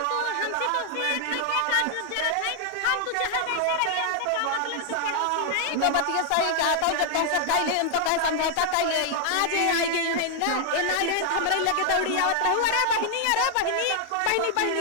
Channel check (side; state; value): both; different; correlation 0.00